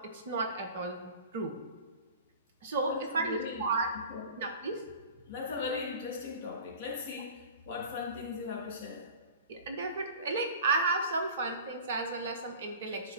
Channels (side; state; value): both; inverted; correlation -0.40